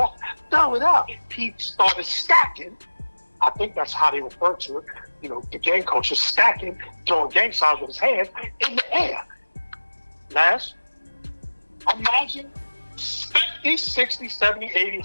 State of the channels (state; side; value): inverted; both; correlation -1.00